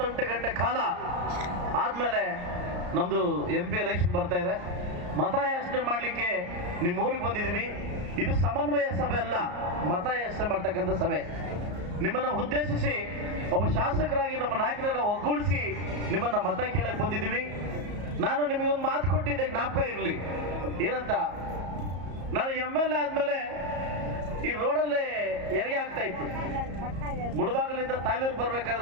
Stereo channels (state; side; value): late; left; 34 ms